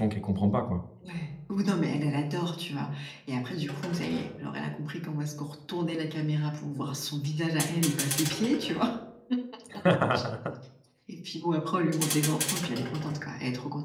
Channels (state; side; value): identical; both; correlation 1.00